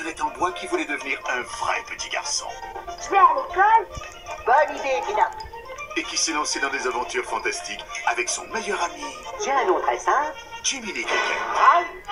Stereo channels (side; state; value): both; identical; correlation 1.00